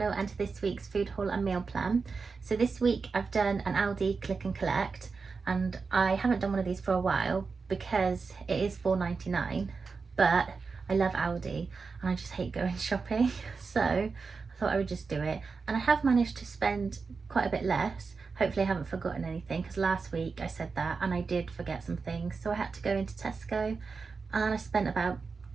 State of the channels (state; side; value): quieter; left; 4.8 dB